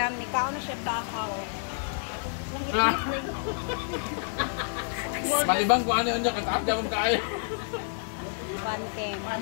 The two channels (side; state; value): right; silent; digital silence